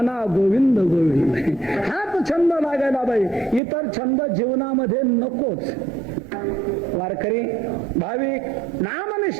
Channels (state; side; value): drops out; left; at 3.6 s